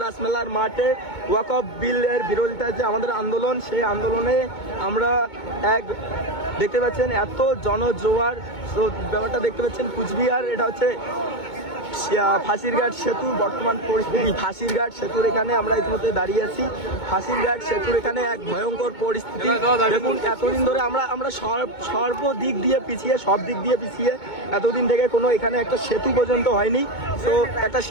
রাসমেলার মাঠে ওয়াকফ বিলের বিরোধিতায় যে আমাদের আন্দোলন, সেই আন্দোলনে আমরা দেখতে পাচ্ছেন এত জনজোয়ার। ব্যাপারটা দেখতে পাচ্ছেন কুচবিহার, এটা হচ্ছে ফাঁসিরঘাট সেতু বর্তমান পরিস্থিতি। ফাঁসিরঘাট সেতুর এখানে আমরা ইতিমধ্যে দাঁড়িয়ে আছি। ফাঁসিরঘাট সেতুর এখানে এক ভয়ঙ্কর পরিস্থিতি। দেখুন এতদিন ধরে আমরা সর্বদিক দিয়ে পিছিয়ে, সব দিক দিয়ে পিছিয়ে, এতদিন থেকে কোনো এখানে একটা সেতু পর্যন্ত হয়নি। তো একটা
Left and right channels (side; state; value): right; late; 2.2 ms